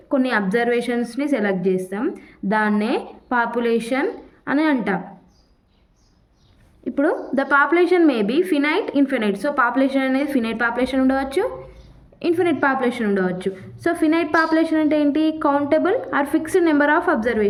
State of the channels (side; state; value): both; identical; correlation 1.00